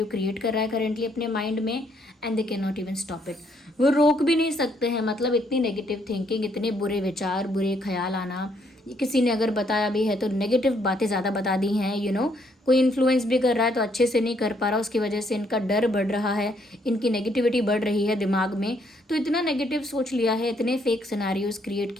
क्रिएट कर रहा है करेंटली अपने माइंड में, and they can not even stop it. वो रोक भी नहीं सकते हैं, मतलब इतनी नेगेटिव थिंकिंग, इतने बुरे विचार, बुरे ख्याल आना। किसी ने अगर बताया भी है तो नेगेटिव बातें ज़्यादा बता दी हैं, कोई इन्फ्लुएंस भी कर रहा है तो अच्छे से नहीं कर पा रहा, उसकी वजह से इनका डर बढ़ रहा है, इनकी नेगेटिविटी बढ़ रही है दिमाग में। तो इतना नेगेटिव सोच लिया है, इतने फेक सिनेरियोज क्रिएट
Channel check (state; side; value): normal; both; correlation 0.70